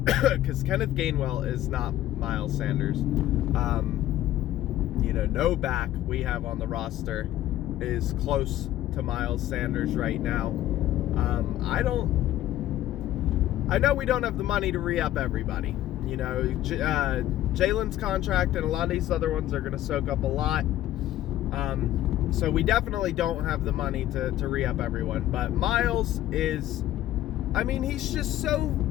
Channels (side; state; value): right; quieter; 13.5 dB